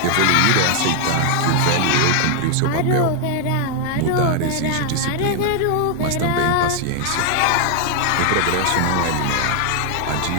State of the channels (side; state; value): both; different; correlation 0.00